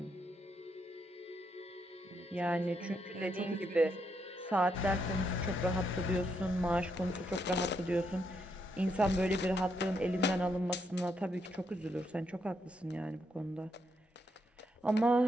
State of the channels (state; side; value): normal; both; correlation 0.78